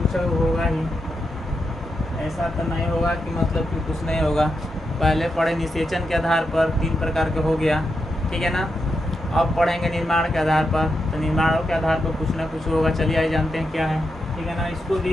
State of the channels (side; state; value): both; normal; correlation 0.85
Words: होगा ही, ऐसा तो नहीं होगा कि मतलब कि कुछ नहीं होगा। पहले पढ़े निषेचन के आधार पर 3 प्रकार के हो गया, ठीक है ना। अब पढ़ेंगे निर्माण के आधार पर, तो निर्माणों के आधार पर कुछ ना कुछ होगा। चलिए आइए जानते हैं क्या है, ठीक है ना। इसको